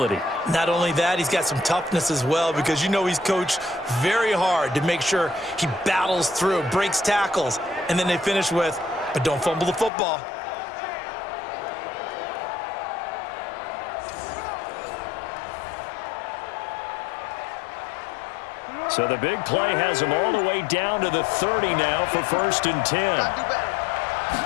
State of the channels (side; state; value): right; drops out; at 9.9 s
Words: Not only that, he's got some toughness as well because you know he's coached very hard to make sure he battles through, breaks tackles, and then they finish with, but don't fumble the football. So the big play has him all the way down to the 30 now for 1st and 10.